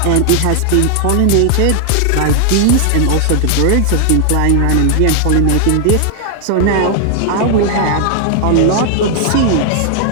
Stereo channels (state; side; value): different; both; correlation 0.00